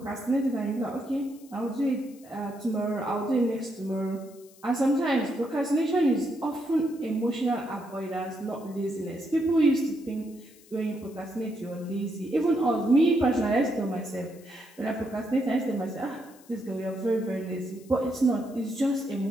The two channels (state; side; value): noise; left; hiss, 25 dB below the sound